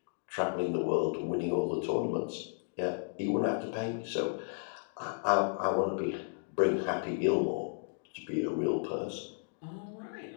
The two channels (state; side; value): silent; right; digital silence